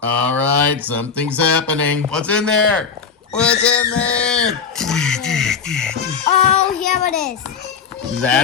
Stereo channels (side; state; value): right; quieter; 6.0 dB